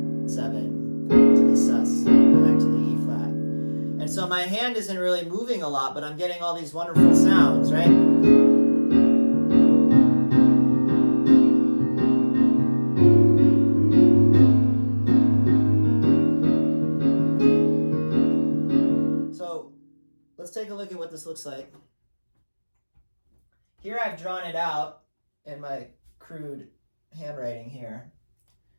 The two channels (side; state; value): both; inverted; correlation -1.00